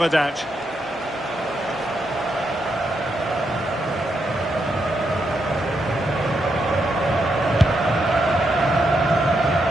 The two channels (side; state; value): both; normal; correlation 0.81